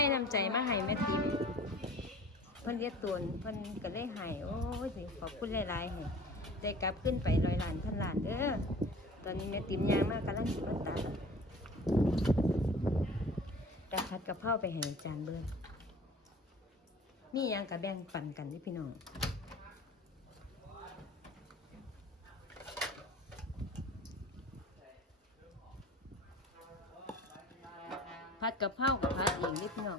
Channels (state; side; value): normal; both; correlation 0.44